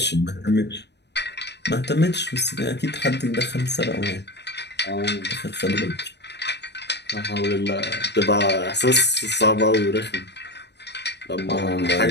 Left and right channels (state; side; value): late; right; 0.50 ms